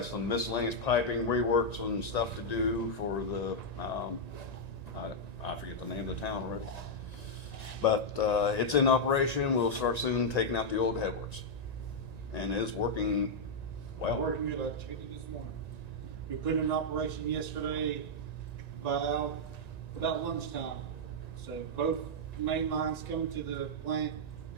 some miscellaneous piping, reworks and stuff to do for the, I forget the name of the town already. But it's in operation. We'll start soon taking out the old headworks. And it's working well. Working good. I checked it this morning. We put it in operation yesterday about lunchtime. So both main lines coming to the plant.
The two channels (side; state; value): right; late; 1.9 ms